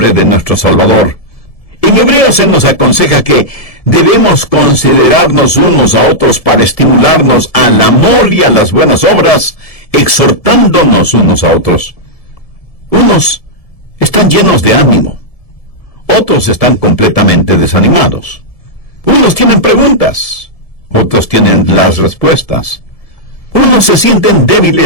de nuestro Salvador. En Hebreos se nos aconseja que debemos considerarnos unos a otros para estimularnos al amor y a las buenas obras, exhortándonos unos a otros. Unos están llenos de ánimo, otros están completamente desanimados. Unos tienen preguntas, otros tienen las respuestas. Unos se sienten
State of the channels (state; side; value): late; right; 1.7 ms